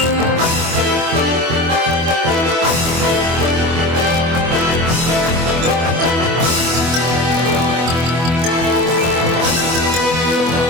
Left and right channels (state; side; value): late; left; 24 ms